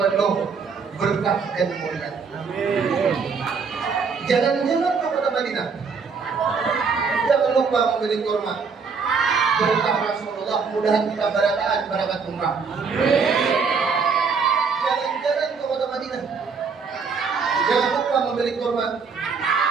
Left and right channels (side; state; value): left; quieter; 5.3 dB